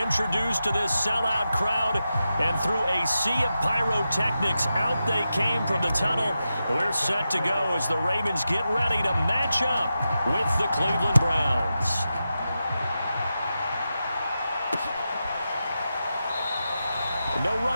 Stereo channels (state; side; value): inverted; both; correlation -0.90